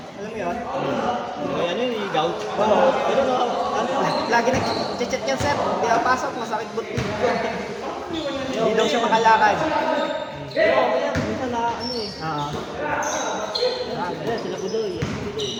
Alam mo yun? Ano yun, yung gout? Pero no, ano, lagi nag-chat yan sir. Hindi ako pasok, masakit butik ko. Hindi daw siya makalakad. Pero okay yan. Minsan na ano eh. Ah. Ayan, sila Budoy.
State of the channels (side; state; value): both; identical; correlation 1.00